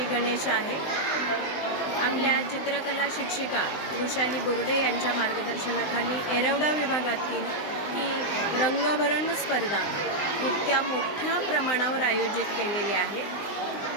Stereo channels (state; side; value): late; right; 20 ms